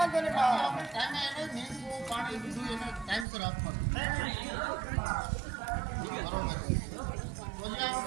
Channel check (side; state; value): left; drops out; at 3.2 s